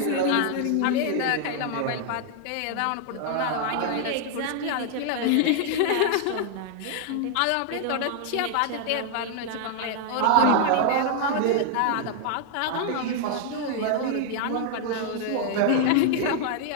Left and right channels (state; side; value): different; both; correlation 0.00